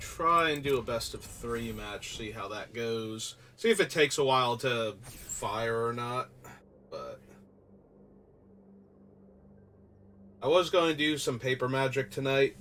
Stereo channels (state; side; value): identical; both; correlation 1.00